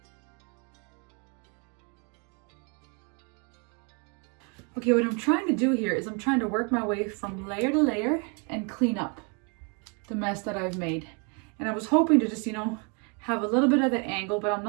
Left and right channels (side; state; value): left; quieter; 35.4 dB